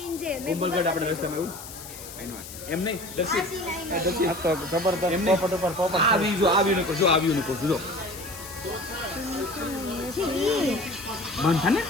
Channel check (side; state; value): left; noise; hiss, 13 dB below the sound